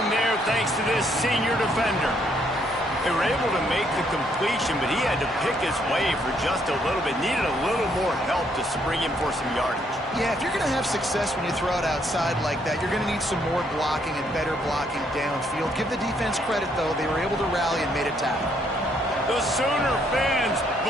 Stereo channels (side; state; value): both; normal; correlation 0.71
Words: there thanks to this senior defender. They were able to make the completion, but he had to pick his way for just a little bit. Needed a little more help to spring him for some yardage. Yeah, if you're going to have success when you throw it outside like that, you're going to need some more blocking and better blocking downfield. Give the defense credit, though. They were able to rally and made a tackle. The Sooner fans